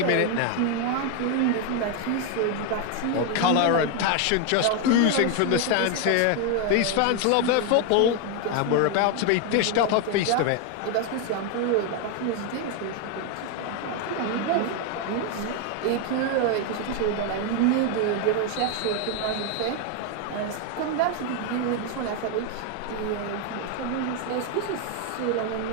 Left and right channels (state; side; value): different; both; correlation 0.01